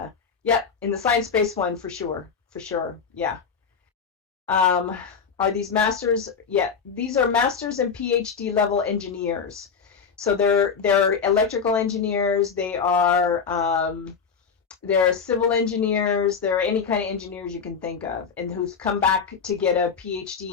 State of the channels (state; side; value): quieter; right; 6.1 dB